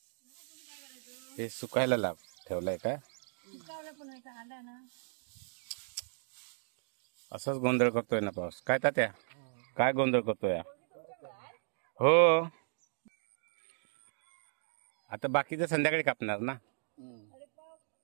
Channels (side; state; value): left; silent; digital silence